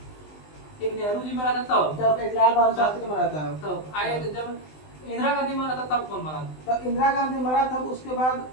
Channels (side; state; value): right; late; 20 ms